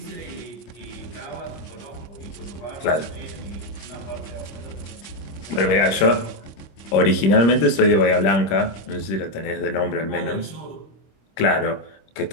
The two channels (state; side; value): late; right; 25 ms